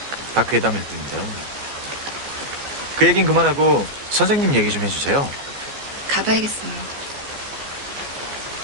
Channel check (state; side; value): late; left; 14 ms